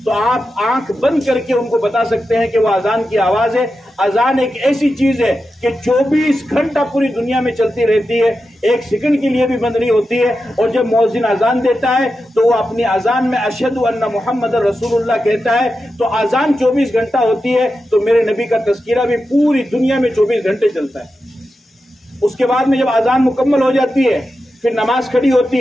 تو آپ آنکھ بند کر کے ان کو بتا سکتے ہیں کہ وہ اذان کی آواز ہے۔ اذان ایک ایسی چیز ہے کہ 24 گھنٹہ پوری دنیا میں چلتی رہتی ہے، 1 سیکنڈ کے لیے بھی بند نہیں ہوتی ہے، اور جب مؤذن اذان دیتا ہے تو وہ اپنی اذان میں اشہد ان محمد رسول اللہ کہتا ہے، تو اذان 24 گھنٹہ ہوتی ہے، تو میرے نبی کا تذکرہ بھی پوری دنیا میں 24 گھنٹے چلتا ہے۔ اس کے بعد میں جب اذان مکمل ہو جاتی ہے، پھر نماز کھڑی ہوتی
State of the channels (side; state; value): both; normal; correlation 0.90